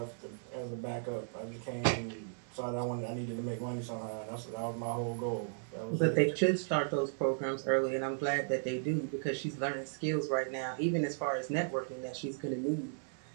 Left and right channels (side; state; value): left; silent; digital silence